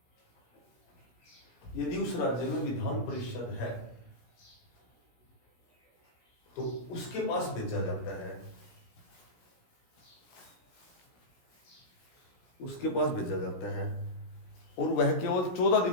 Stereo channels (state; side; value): late; right; 16 ms